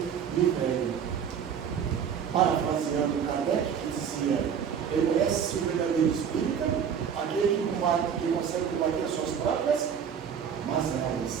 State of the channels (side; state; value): left; quieter; 7.7 dB